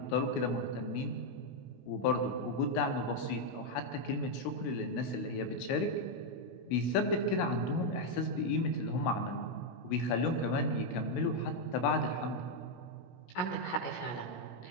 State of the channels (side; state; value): right; late; 17 ms